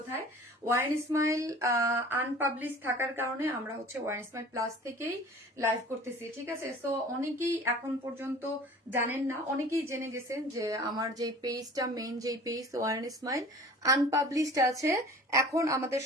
ওয়ারেন স্মাইল আনপাবলিশ থাকার কারণে আমরা হচ্ছে ওয়ারেন স্মাইল প্লাস থেকেই লাইভ করতেছি, ঠিক আছে। সো অনেকেই এখন পর্যন্ত জানেন না, অনেকেই জেনে গেছেন যে আমার যে পেজটা মেইন যে পেজ ওয়ারেন স্মাইল আনপাবলিশড আছে। এখন আমাদের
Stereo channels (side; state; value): both; normal; correlation 0.44